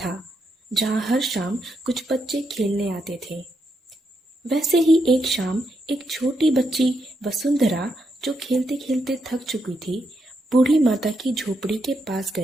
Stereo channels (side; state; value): both; normal; correlation 0.81